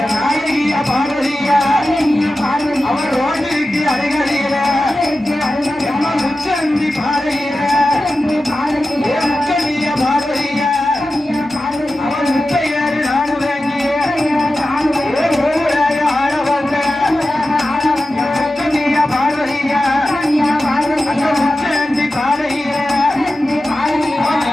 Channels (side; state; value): both; normal; correlation 0.93